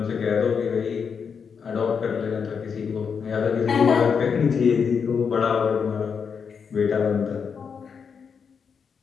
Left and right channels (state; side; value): quieter; right; 6.3 dB